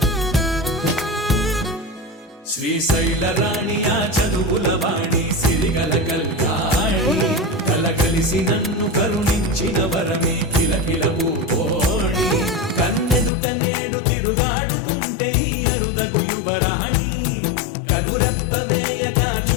శ్రీశైల రాణి ఆ చదువుల వాణి సిరిగల కళ్యాణి కలగలిసి నన్ను కరుణించిన వరమే కిలకిల పూకోణి కన్నెదు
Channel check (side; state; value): right; drops out; at 13.3 s